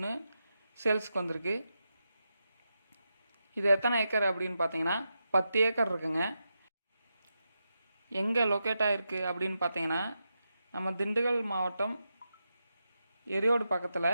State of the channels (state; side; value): inverted; both; correlation -0.88